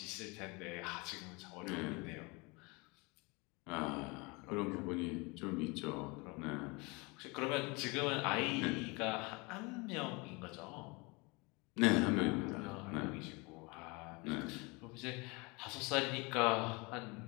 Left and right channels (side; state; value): right; quieter; 27.3 dB